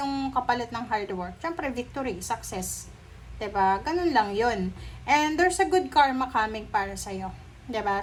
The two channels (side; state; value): both; identical; correlation 1.00